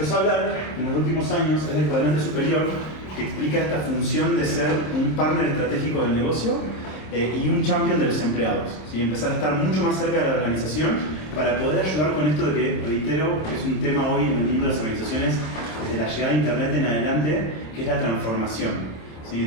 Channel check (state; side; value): late; right; 26 ms